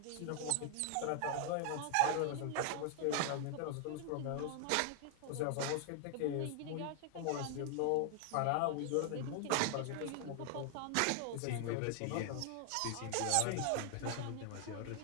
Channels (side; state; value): both; different; correlation 0.00